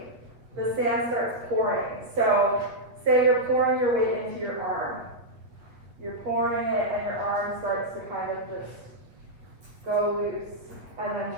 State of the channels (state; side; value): late; left; 8.2 ms